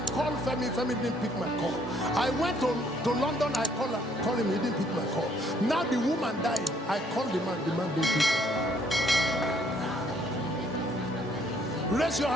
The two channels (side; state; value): both; normal; correlation 0.65